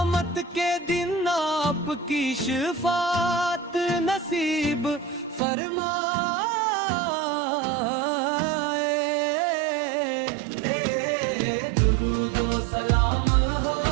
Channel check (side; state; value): left; drops out; at 5.4 s